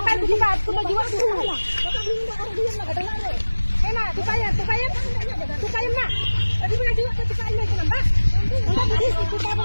tupa jiwa tuh. Enak, tupain. Tupain mak. Tadi punya jiwa tupain lagi nambah. Tupa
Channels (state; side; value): inverted; both; correlation -1.00